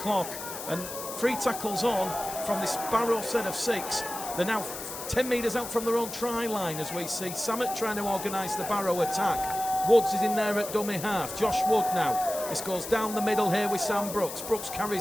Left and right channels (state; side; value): noise; left; hiss, 9 dB below the sound